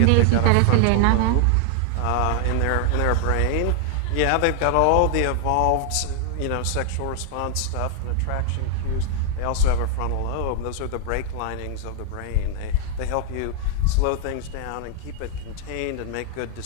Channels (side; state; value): both; different; correlation 0.00